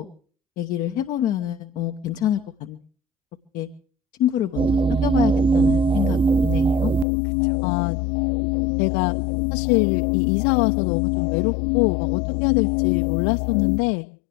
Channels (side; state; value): right; drops out; at 7.1 s